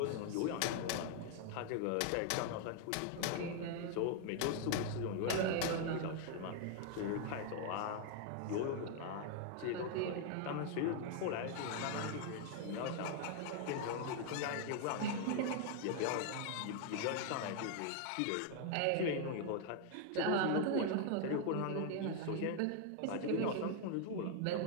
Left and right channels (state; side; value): different; both; correlation 0.00